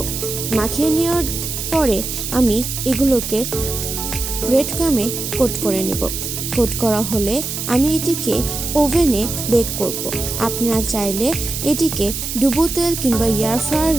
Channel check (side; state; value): right; noise; hiss, 5 dB below the sound